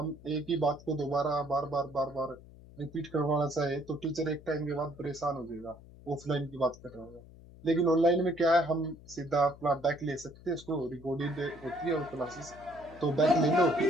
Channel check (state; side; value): noise; left; hum, 20 dB below the sound